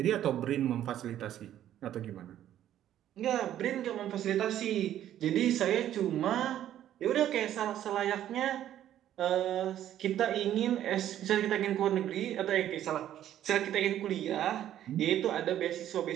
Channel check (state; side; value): quieter; left; 11.6 dB